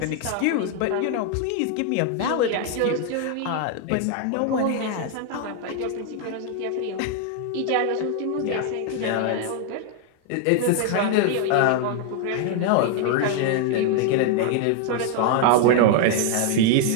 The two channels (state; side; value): different; both; correlation 0.00